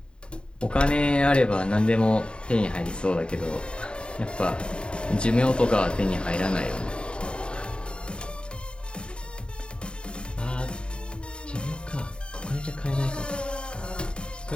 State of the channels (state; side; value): late; right; 0.052 ms